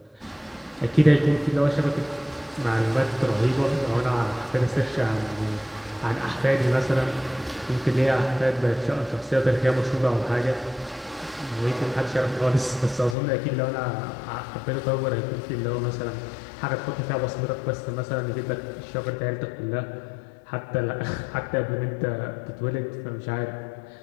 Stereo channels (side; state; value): right; drops out; at 13.2 s